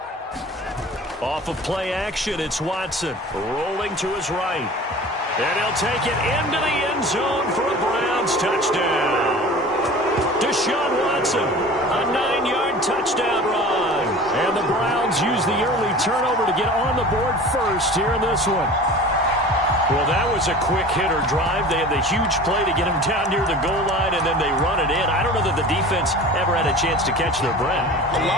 Off of play action, it's Watson rolling to his right. And he'll take it into the end zone for a Browns touchdown. Deshaun Watson, a 9-yard touchdown run. And the Browns use the early turnover to get on the board first here in this one. Well, that was a quick hitter drive. They had the huge play to get him down near the goal line, and then they run it in. I don't know that the defense ever had a chance to catch their breath. A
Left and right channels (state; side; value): normal; both; correlation 0.39